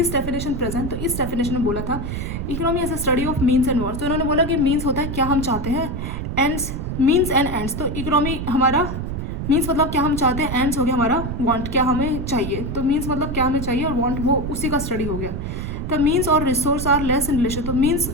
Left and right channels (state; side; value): noise; right; rumble, 4 dB below the sound